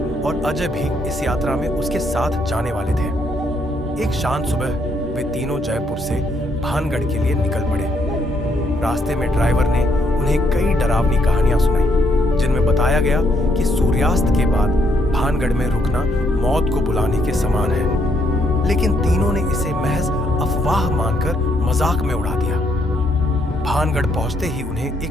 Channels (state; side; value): normal; both; correlation 0.73